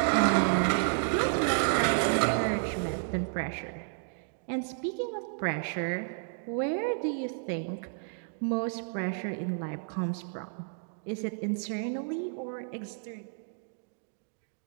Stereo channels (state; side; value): silent; left; digital silence